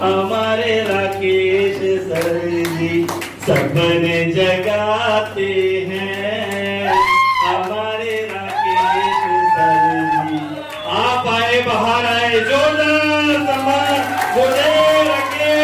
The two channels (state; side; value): identical; both; correlation 1.00